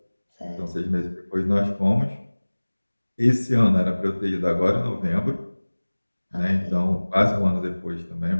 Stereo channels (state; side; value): inverted; both; correlation -1.00